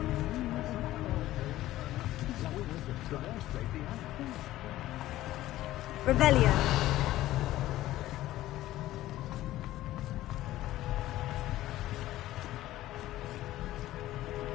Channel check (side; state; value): right; quieter; 15.2 dB